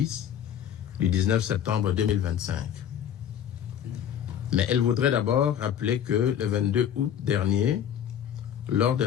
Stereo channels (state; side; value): quieter; right; 9.5 dB